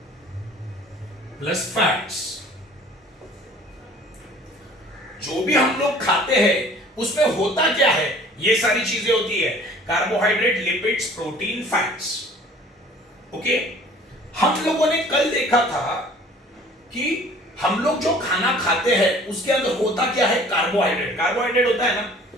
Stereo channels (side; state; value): both; normal; correlation 0.50